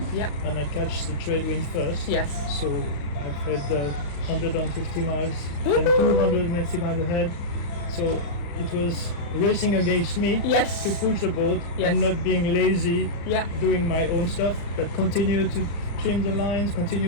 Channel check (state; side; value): late; right; 35 ms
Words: Yeah. and I catch the trade wind first. Yes. So I've had 150 miles and 290 miles ahead. So it was racing against me Yes. to push the boat Yes. and not being lazy, Yeah. doing my own stuff, but continue to trim the lines,